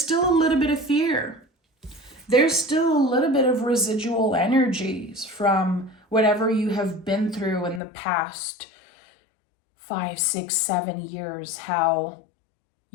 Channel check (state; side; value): drops out; right; at 7.8 s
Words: a little bit of fear. There's still a little bit of residual energies from whatever you have been through in the past 5, 6, 7 years, how